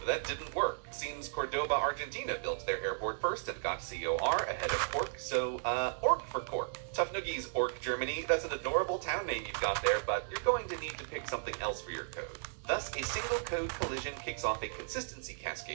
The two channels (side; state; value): left; silent; digital silence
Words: that didn't work. Seems Cordoba, Argentina built their airport first and got COR ahead of Cork, so, Ork for Cork. Tough noogies, Ork, Germany. That's an adorable town name you've got there, but you're going to need to pick something else for your code. Thus, a single code collision kicks off a consistency